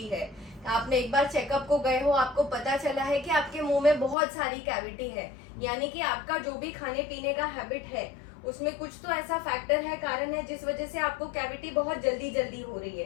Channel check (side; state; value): right; drops out; at 4.2 s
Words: है, आपने एक बार चेकअप को गए हो, आपको पता चला है कि आपके मुंह में बहुत सारी कैविटी है, यानी कि आपका जो भी खाने पीने का हैबिट है उसमें कुछ तो ऐसा फैक्टर है, कारण है, जिस वजह से आपको कैविटी बहुत जल्दी जल्दी हो रही